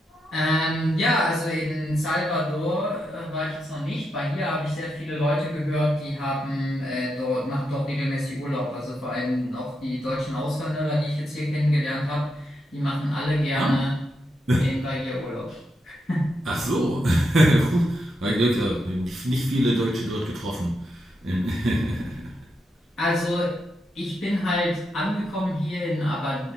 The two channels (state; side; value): normal; both; correlation 0.83